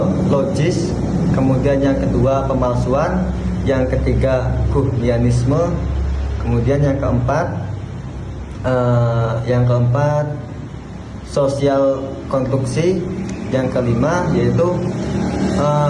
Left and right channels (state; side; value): identical; both; correlation 1.00